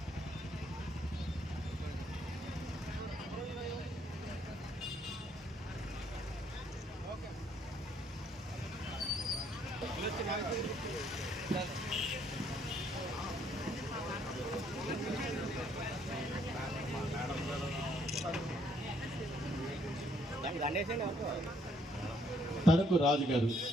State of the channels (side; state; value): both; normal; correlation 0.68